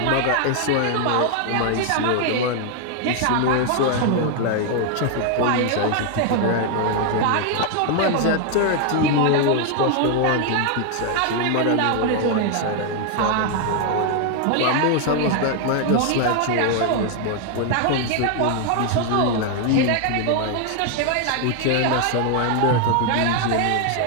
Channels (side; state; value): both; different; correlation 0.00